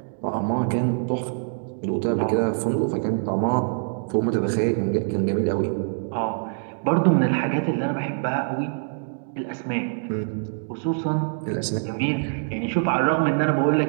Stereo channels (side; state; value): left; silent; digital silence